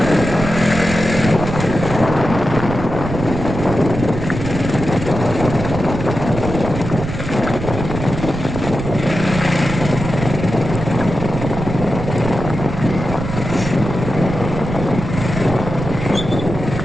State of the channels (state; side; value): noise; right; rumble, 6 dB below the sound